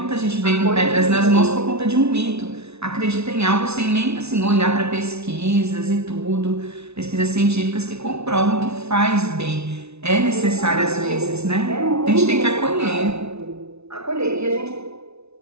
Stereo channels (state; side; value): late; left; 0.80 ms